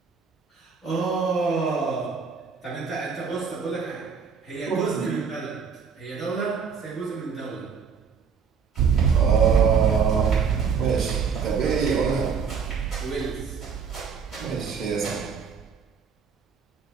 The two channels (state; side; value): quieter; left; 6.1 dB